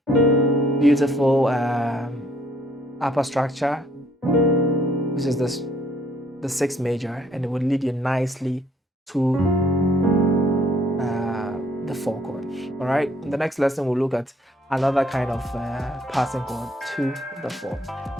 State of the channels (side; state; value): both; normal; correlation 0.64